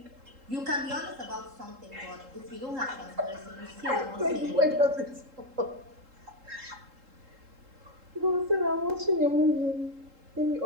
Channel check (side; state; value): left; late; 3.7 ms